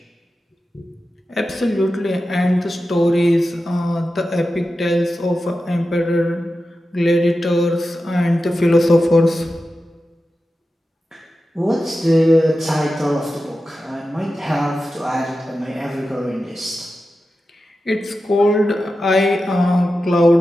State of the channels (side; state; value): both; normal; correlation 0.92